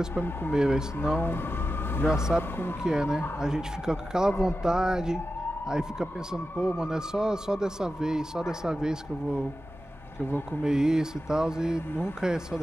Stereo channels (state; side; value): normal; both; correlation 0.92